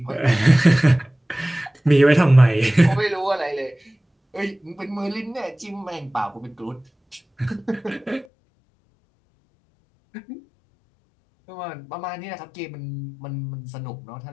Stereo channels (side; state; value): right; drops out; at 8.2 s